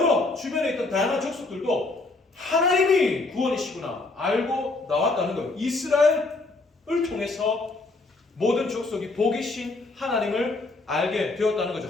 주변에 있던 다양한 족속들도 하나님이 구원이시구나 알고 나왔다는 거예요. 이스라엘을 통해서 모든 족속이 복이신 하나님을 알게 되었다는 거죠.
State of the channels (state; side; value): quieter; right; 3.3 dB